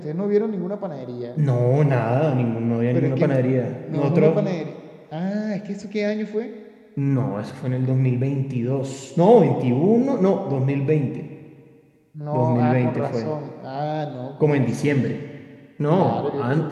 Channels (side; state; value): both; identical; correlation 1.00